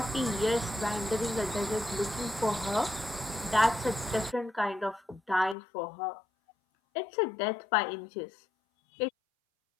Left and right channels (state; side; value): drops out; right; at 5.6 s